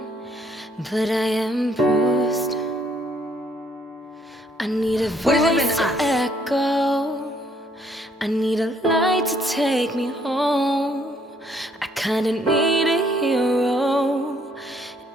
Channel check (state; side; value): normal; both; correlation 0.67